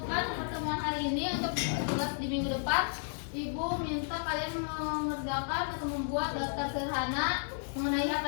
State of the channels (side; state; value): right; silent; digital silence